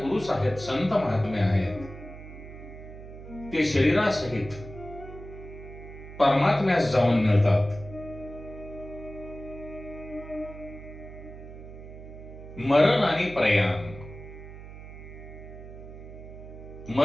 आहेत, संत महात्मे आहेत, ते शरीरासहित परमात्म्यास जाऊन मिळतात. मरण आणि प्रयाण,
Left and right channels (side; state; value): right; noise; hum, 14 dB below the sound